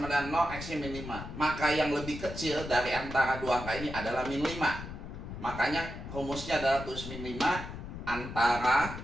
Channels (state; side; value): noise; left; rumble, 9 dB below the sound